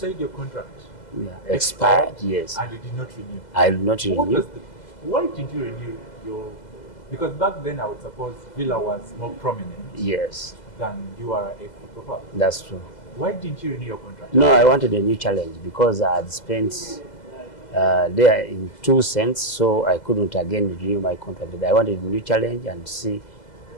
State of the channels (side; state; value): right; late; 2.0 ms